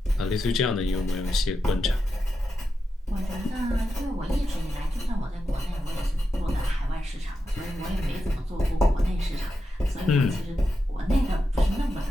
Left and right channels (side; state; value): both; normal; correlation 0.88